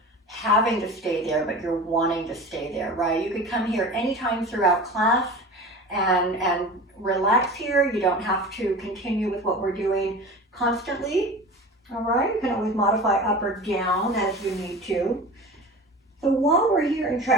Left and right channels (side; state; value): both; normal; correlation 0.34